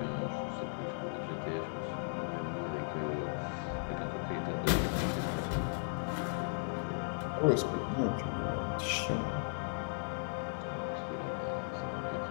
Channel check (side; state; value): right; silent; digital silence